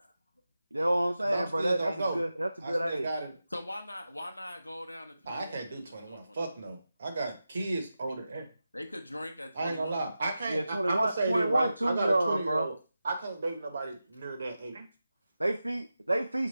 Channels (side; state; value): both; inverted; correlation -0.92